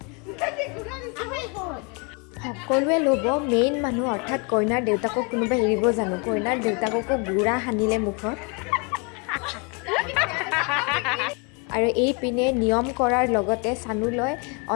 সকলোৱে ল'ব, মেইন মানুহ অৰ্থাৎ কইনাৰ দেউতাকক কোনোবাই এৰিব জানো? কইনাৰ দেউতাককো গুড়া সানিলে মুখত। আৰু এইপিনে নিয়ম কৰাৰ লগতে চানুলৈ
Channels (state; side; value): quieter; right; 32.3 dB